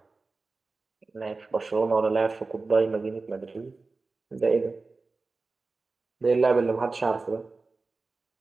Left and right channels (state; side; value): quieter; left; 3.8 dB